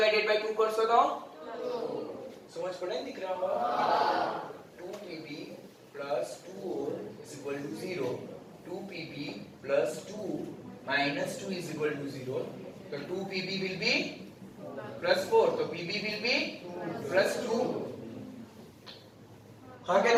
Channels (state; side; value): identical; both; correlation 1.00